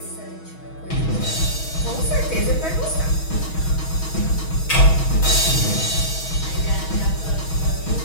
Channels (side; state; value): right; late; 6.2 ms